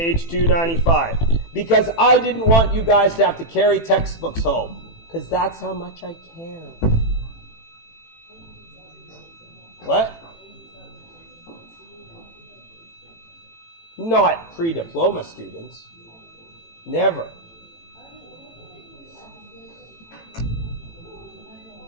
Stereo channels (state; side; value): late; right; 18 ms